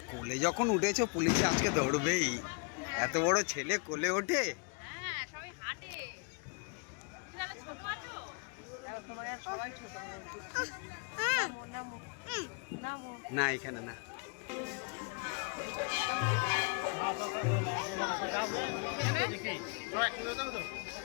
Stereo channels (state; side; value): quieter; right; 35.8 dB